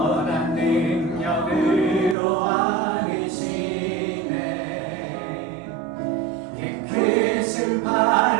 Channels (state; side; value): drops out; left; at 2.1 s